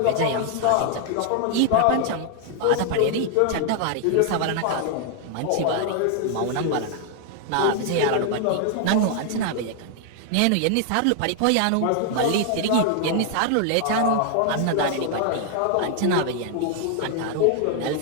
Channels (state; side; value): different; both; correlation 0.00